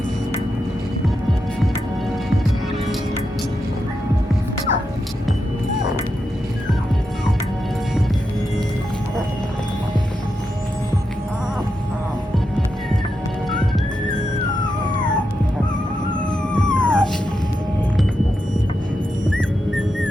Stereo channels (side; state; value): both; normal; correlation 0.86